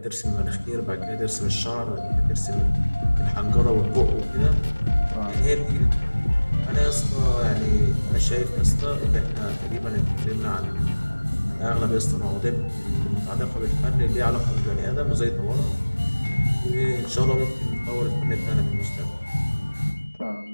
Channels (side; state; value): both; inverted; correlation -1.00